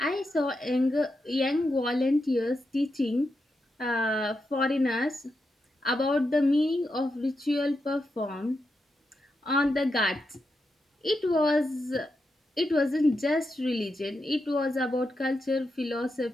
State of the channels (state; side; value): normal; both; correlation 0.86